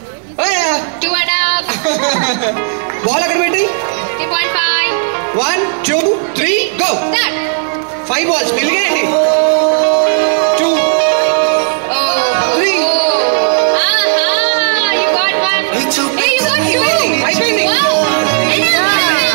బాల్ అక్కడ పెట్టి 1 2 3 గో. 5 balls మిలిగేయండి. 2 3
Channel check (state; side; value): silent; left; digital silence